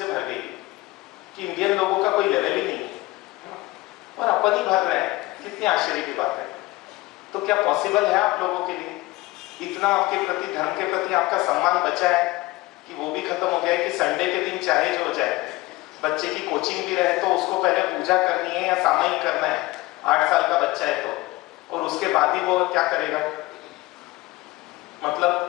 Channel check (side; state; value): right; quieter; 20.3 dB